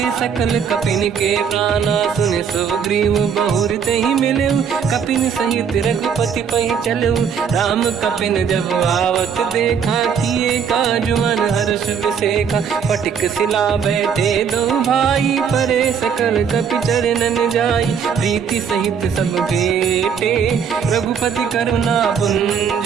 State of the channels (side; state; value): left; quieter; 7.1 dB